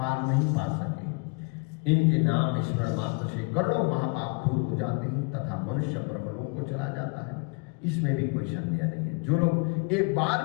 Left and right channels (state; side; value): quieter; right; 31.1 dB